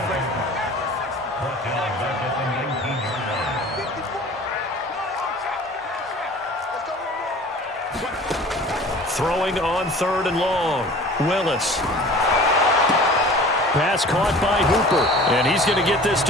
Throwing on 3rd and long. Willis. Pass caught by Hooper. And he's going to get this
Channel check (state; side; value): normal; both; correlation 0.44